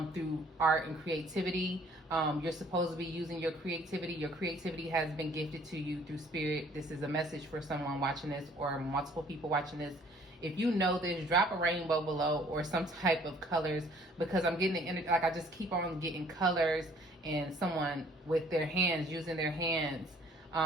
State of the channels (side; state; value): both; normal; correlation 0.58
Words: through art and creativity. You're supposed to be using your creativity. Your creativity has been gifted to you through spirit. This is a message for someone watching this or multiple people watching this. If you know this, drop a rainbow below or some type of colors, because I'm getting the energy, like I just keep on getting colors and someone with their hands, using their hands,